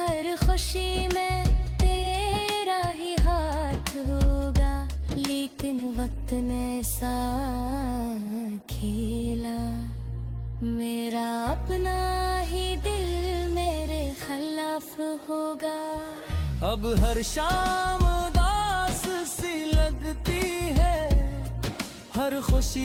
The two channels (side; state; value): both; identical; correlation 1.00